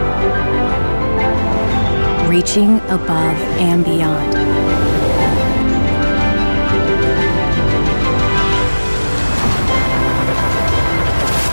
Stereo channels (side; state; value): both; inverted; correlation -1.00